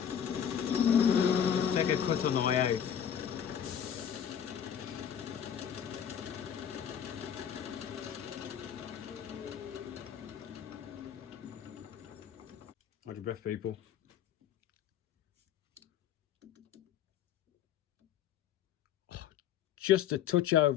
Take a cut on the way out. Hold your breath, people. Oh, just a touch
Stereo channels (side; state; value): right; quieter; 9.0 dB